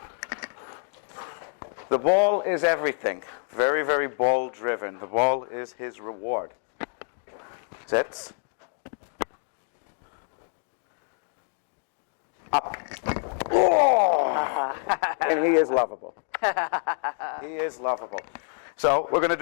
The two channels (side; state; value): right; silent; digital silence